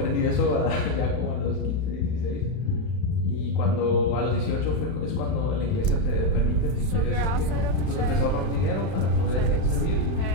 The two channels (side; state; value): right; late; 31 ms